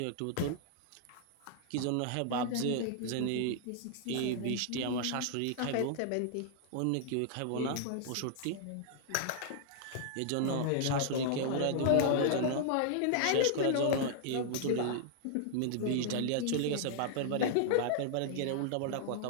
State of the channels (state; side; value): different; both; correlation 0.00